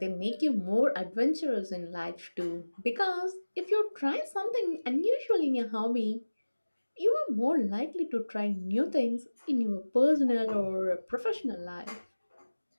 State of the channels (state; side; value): inverted; both; correlation -1.00